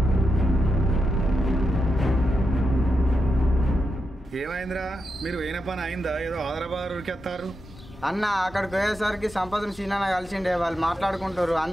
ఏమైందిరా, మీరు వేయిన పని అయిందా? ఏదో ఆదరాబాద్ ఉరికెత్తారు. అన్న అక్కడికి పోయేసరికి సంపదను సీనాన్న కలిసిండే, వాళ్ళు మాట్లాడుకుంటారు,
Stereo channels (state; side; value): normal; both; correlation 0.86